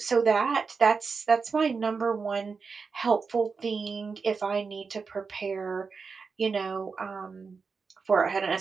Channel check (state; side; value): quieter; left; 5.0 dB